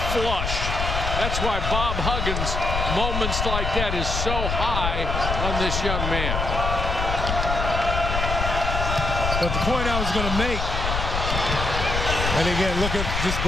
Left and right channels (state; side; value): noise; left; rumble, 2 dB below the sound